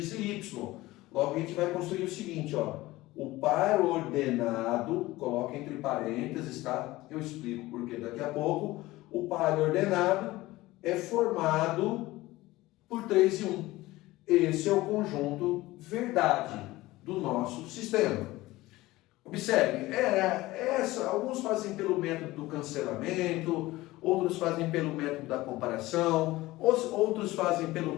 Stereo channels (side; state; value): right; quieter; 18.5 dB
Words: e y. Logo a gente vai construir o seguinte, ó. O par ordenado, coloca entre parênteses, tá? Eu explico porque daqui a pouco. O par ordenado é formado por 3 e 1. Esse é o conjunto verdade do nosso sistema. Observe, alguns fazem pelo método do cancelamento, outros fazem pelo método da comparação, outros fazem pelo